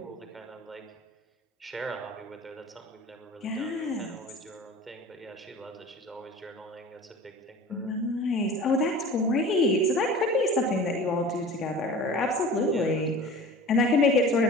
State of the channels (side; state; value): both; normal; correlation 0.39